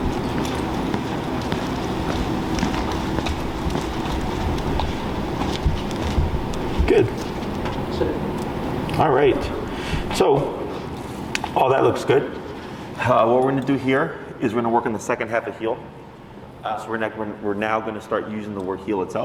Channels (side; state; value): both; identical; correlation 1.00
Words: Good. All right. So, all that looks good. What we're going to do here is we're going to work on the second half of heel. So we're now going to start using the word heel